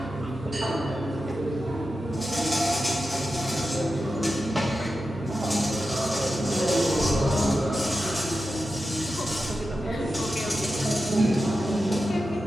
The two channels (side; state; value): both; normal; correlation 0.91